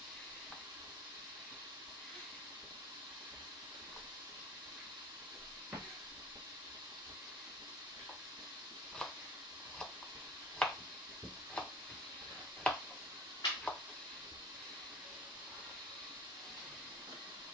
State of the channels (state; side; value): normal; both; correlation 0.40